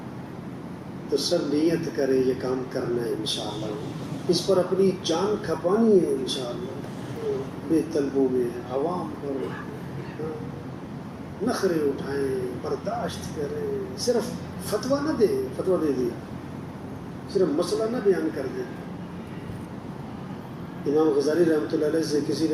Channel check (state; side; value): identical; both; correlation 1.00